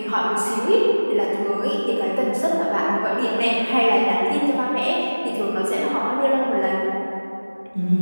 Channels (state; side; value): inverted; both; correlation -1.00